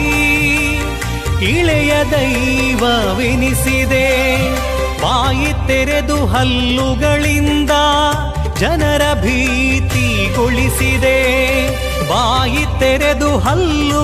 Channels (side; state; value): both; identical; correlation 1.00